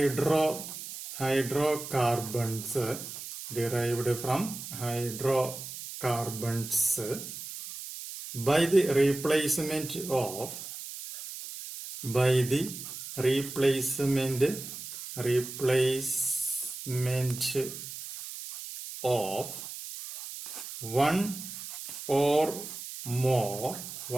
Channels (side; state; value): right; noise; hiss, 9 dB below the sound